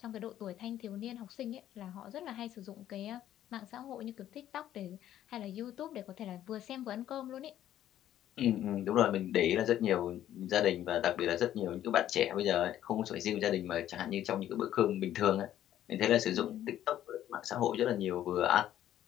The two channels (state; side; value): quieter; right; 11.9 dB